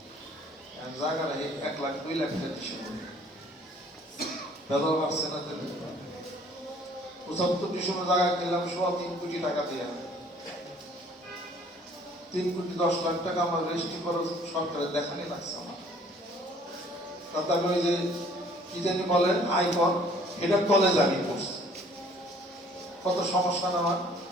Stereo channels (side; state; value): both; normal; correlation 0.56